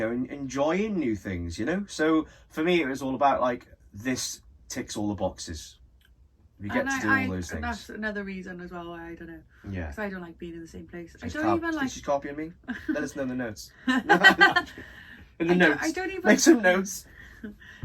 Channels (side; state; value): both; identical; correlation 1.00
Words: enjoying new things, you know? So for me, it was all about like, this ticks all the boxes. We get to do all those and things. that's another reason as well why I don't know. Yeah. Because I don't like being in the same place. She's I don't even like. She's copying me. Let us know in the notes. I In the don't- notes. I don't even. Make some notes.